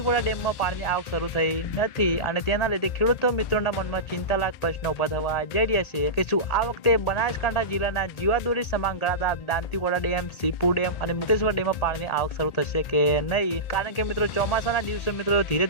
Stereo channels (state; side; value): late; right; 1.8 ms